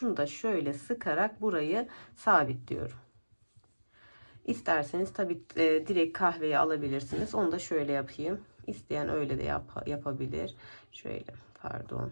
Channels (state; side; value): inverted; both; correlation -1.00